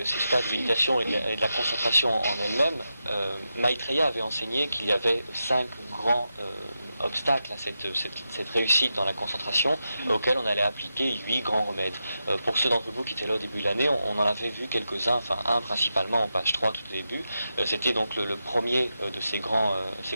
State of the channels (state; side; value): inverted; both; correlation -0.88